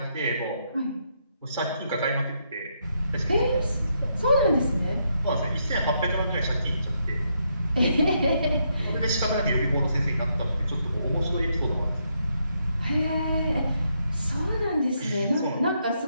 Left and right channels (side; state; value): both; inverted; correlation -0.78